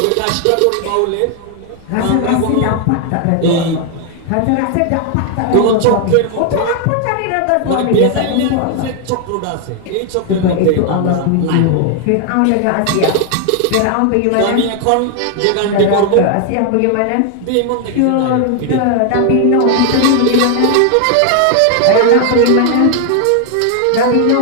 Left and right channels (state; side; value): different; both; correlation 0.00